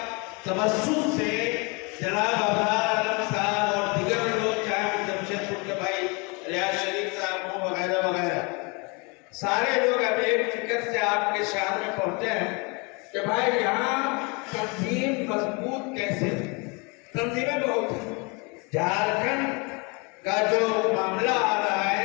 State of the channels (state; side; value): quieter; right; 30.3 dB